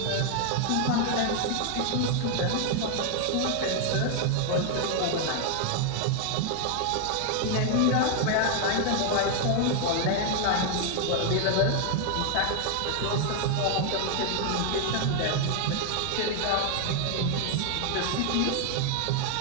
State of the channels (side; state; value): both; different; correlation 0.00